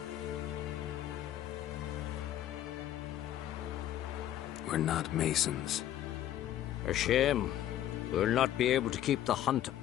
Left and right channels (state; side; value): quieter; right; 12.1 dB